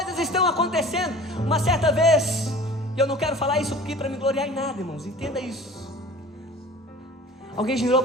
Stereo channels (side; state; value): both; normal; correlation 0.43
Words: estão acontecendo? Uma certa vez, e eu não quero falar isso aqui para me gloriar em nada, irmãos, entenda isso. Alguém girou